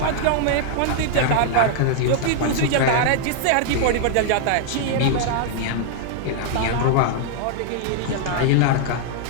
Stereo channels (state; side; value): different; both; correlation 0.00